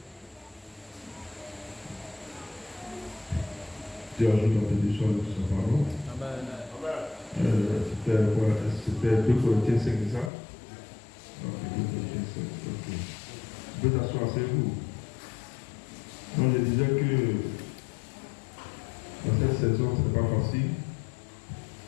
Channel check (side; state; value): right; drops out; at 10.3 s